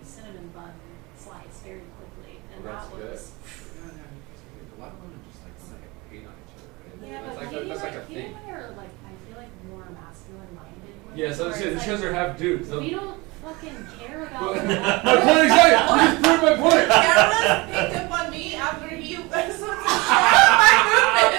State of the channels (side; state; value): left; quieter; 24.4 dB